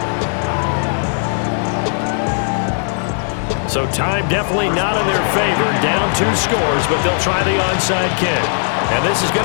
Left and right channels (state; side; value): silent; right; 68 dB below the other